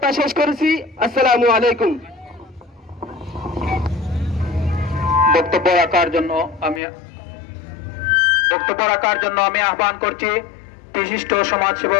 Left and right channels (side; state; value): right; drops out; at 6.8 s